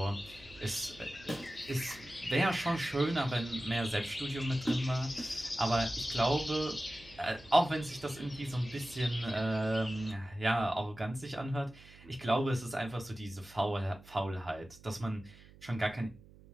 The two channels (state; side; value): noise; right; hum, 22 dB below the sound